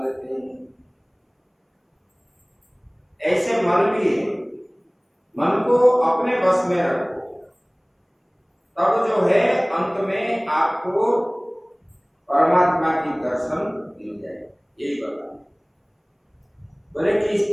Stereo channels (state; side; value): identical; both; correlation 1.00